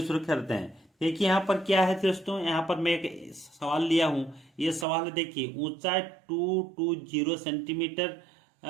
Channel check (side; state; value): left; drops out; at 4.9 s